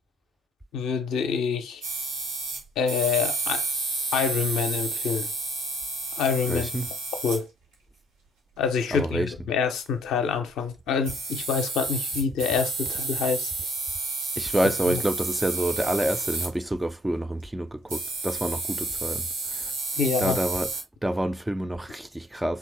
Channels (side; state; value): both; normal; correlation 0.63